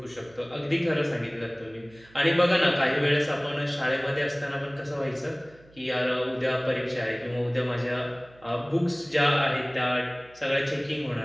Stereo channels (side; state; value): right; noise; hum, 26 dB below the sound